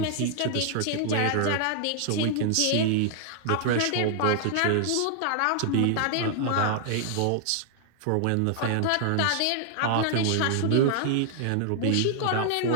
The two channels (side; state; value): both; different; correlation -0.01